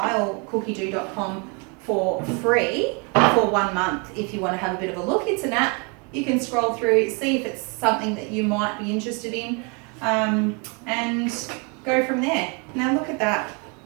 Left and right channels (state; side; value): quieter; left; 33.4 dB